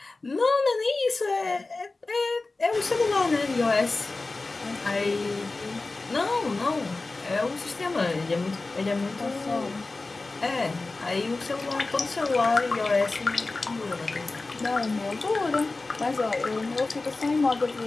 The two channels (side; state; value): right; quieter; 3.4 dB